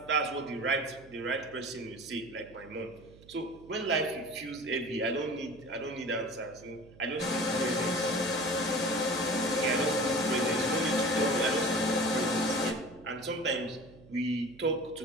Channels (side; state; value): right; noise; hum, 22 dB below the sound